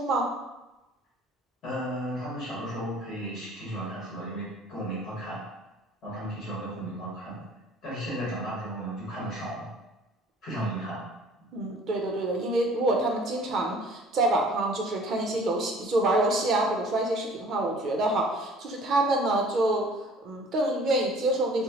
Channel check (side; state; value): both; normal; correlation 0.51